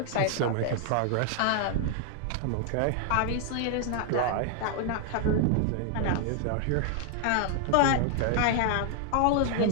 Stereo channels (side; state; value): both; different; correlation 0.00